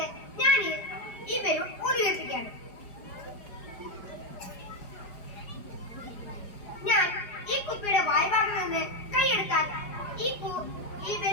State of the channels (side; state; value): right; late; 4.9 ms